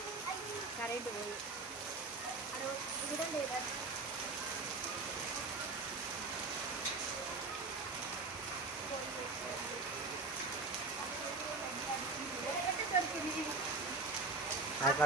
కరెంటు పోయి కూడా లేదా.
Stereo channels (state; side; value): quieter; left; 3.6 dB